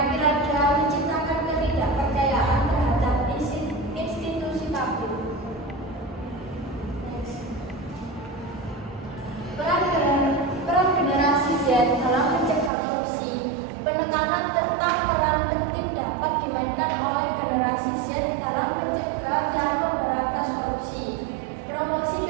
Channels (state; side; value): drops out; left; at 12.7 s